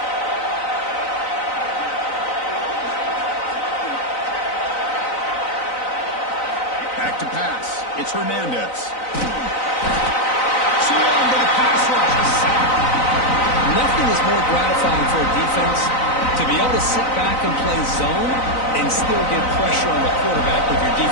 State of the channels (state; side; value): late; right; 3.9 ms